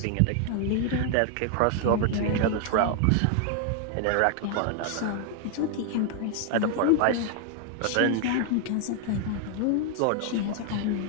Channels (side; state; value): both; different; correlation 0.00